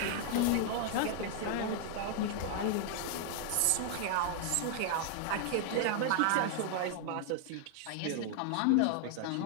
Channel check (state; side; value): different; both; correlation 0.00